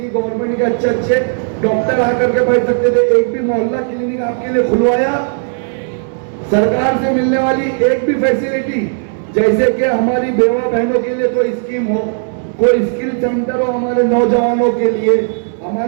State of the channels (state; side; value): silent; left; 66 dB below the other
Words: गवर्नमेंट के अच्छे डॉक्टर आकर के बैठ सकते थे, एक भी मोहल्ला क्लिनिक आपके लिए खुलवाया। सरकार से मिलने वाली एक भी फैसिलिटी, जैसे कि हमारी बेवा बहनों के लिए कोई स्कीम हो, कोई स्किल सेंटर हो, हमारे नौजवानों के लिए,